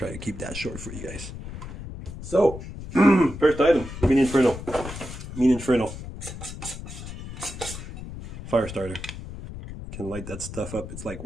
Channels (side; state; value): left; noise; rumble, 10 dB below the sound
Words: to keep that short for you guys. So, first item, Mean Inferno. Mean Inferno. Fire starter. You can light that stuff up. It's like